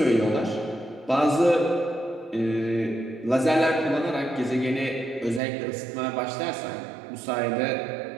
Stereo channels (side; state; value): left; drops out; at 5.4 s